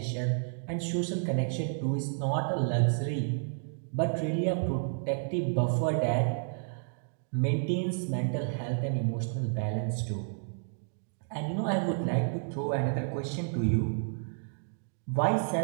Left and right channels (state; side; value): silent; left; digital silence